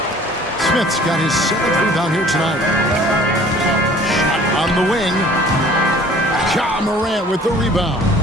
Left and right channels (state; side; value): normal; both; correlation 0.51